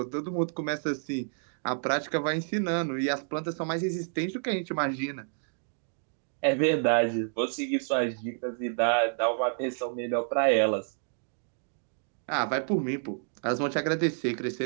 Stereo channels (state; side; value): silent; left; digital silence